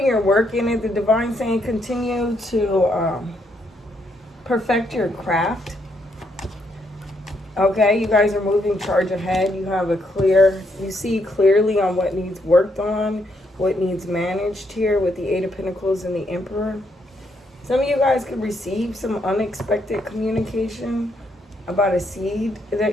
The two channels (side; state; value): both; normal; correlation 0.75